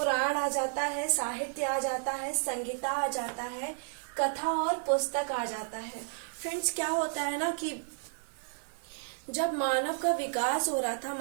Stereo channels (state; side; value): silent; left; 56 dB below the other